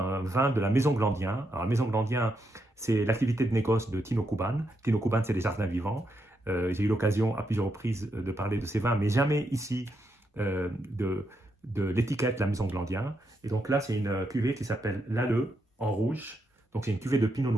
vin de la Maison Glandien. Alors la Maison Glandien, c'est l'activité de négoce de Tino Kuban. Tino Kuban, c'est des jardins vivants. J'ai eu l'occasion à plusieurs reprises de parler de ces vins, mais jamais ici de l'étiquette La Maison Glandien. Et donc là, c'est une cuvée qui s'appelle l'Alleux en rouge. Donc c'est une cuvée de Pinot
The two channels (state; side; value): normal; both; correlation 0.81